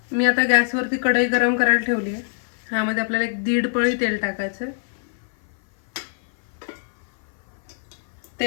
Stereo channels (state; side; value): silent; right; 57 dB below the other